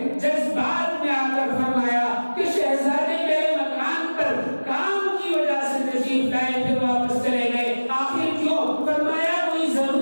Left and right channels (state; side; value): inverted; both; correlation -1.00